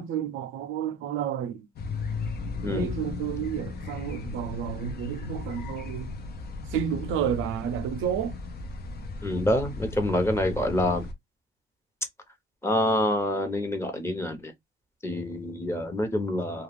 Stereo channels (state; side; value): normal; both; correlation 0.52